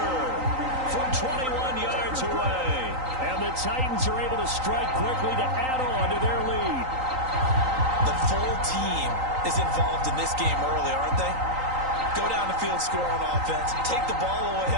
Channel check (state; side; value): late; left; 3.9 ms